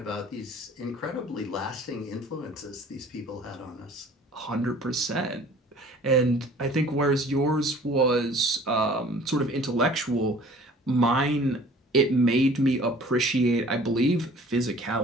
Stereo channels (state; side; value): normal; both; correlation 0.50